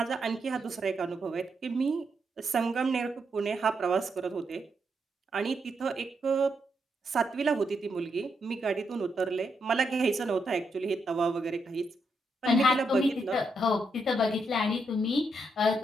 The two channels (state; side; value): normal; both; correlation 0.80